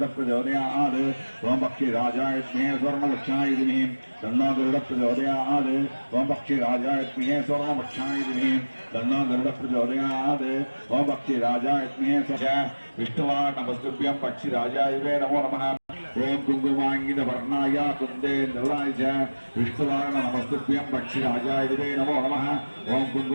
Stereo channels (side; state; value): both; inverted; correlation -1.00